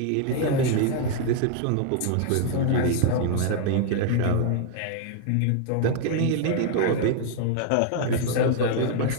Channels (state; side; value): different; both; correlation 0.00